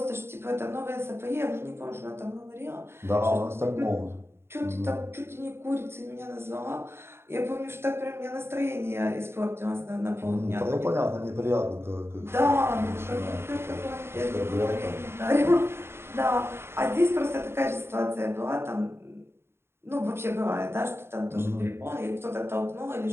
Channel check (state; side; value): late; left; 0.12 ms